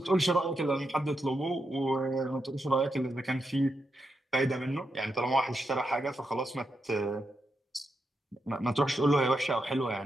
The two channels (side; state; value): both; normal; correlation 0.85